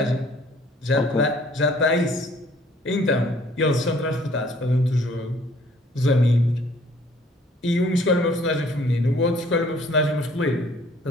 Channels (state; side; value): normal; both; correlation 0.58